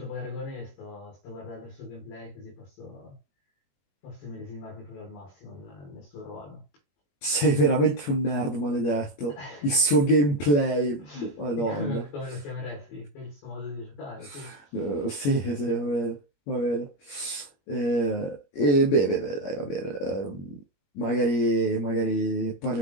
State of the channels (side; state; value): right; late; 21 ms